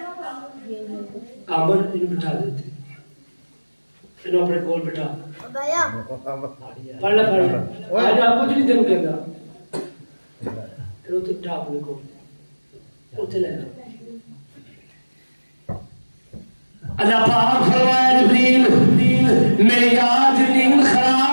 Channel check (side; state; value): both; inverted; correlation -1.00